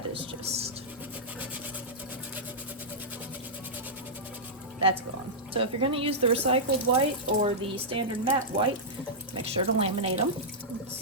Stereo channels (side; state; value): both; normal; correlation -0.10